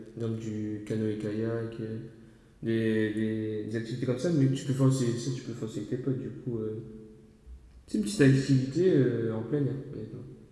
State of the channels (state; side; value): identical; both; correlation 1.00